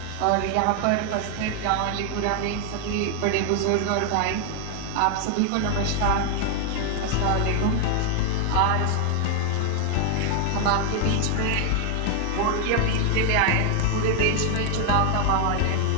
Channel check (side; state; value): both; different; correlation 0.00